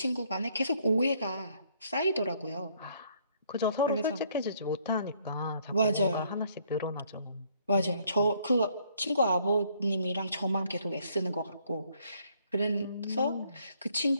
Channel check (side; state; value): both; inverted; correlation -0.66